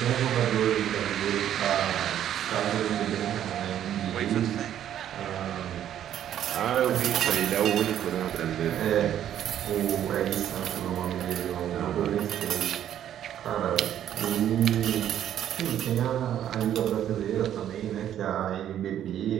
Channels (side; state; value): left; quieter; 10.7 dB